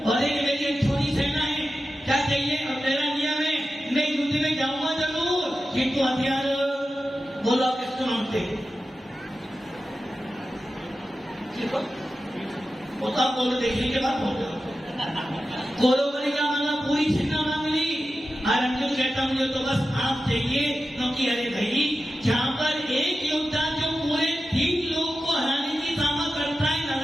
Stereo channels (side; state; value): both; normal; correlation 0.92